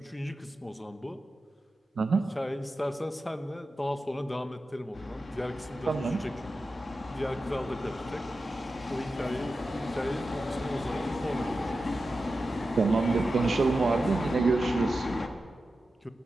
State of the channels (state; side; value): normal; both; correlation 0.92